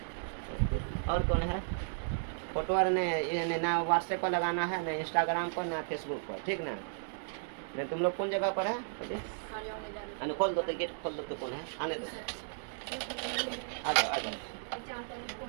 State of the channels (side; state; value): left; silent; digital silence